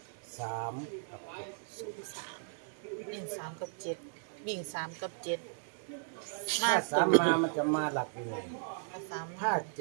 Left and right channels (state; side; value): silent; left; digital silence